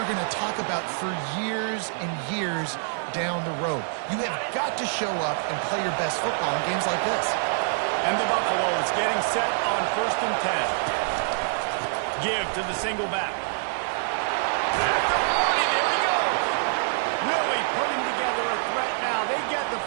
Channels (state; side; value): silent; left; digital silence